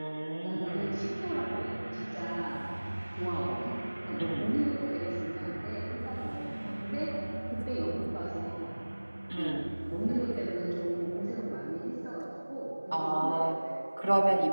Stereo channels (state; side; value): inverted; both; correlation -1.00